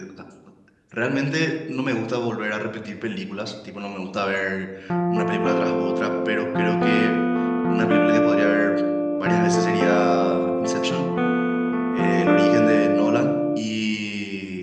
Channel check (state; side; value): identical; both; correlation 1.00